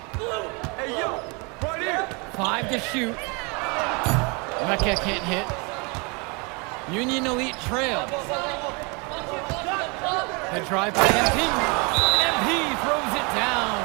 Hey, yo, right here. 5 to shoot. Mecca can't hit. Union Elite trails. The drive by MP. MP throws it down.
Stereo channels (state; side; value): quieter; left; 30.8 dB